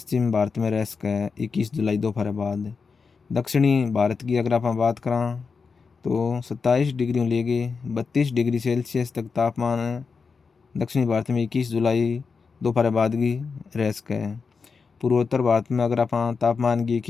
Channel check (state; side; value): quieter; right; 5.1 dB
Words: भारत में रह सके है 21 जुलाई दोपहर बाद। दक्षिणी भारत की अगर आप बात करें तो 27 डिग्री लेके 32 डिग्री सेल्सियस तक तापमान दक्षिणी भारत में 21 जुलाई दोपहर बाद की रह सके है। पूर्वोत्तर भारत में अगर आप तापमान की